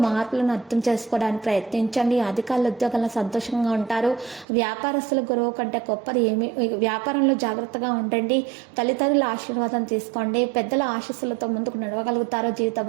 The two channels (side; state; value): left; drops out; at 4.5 s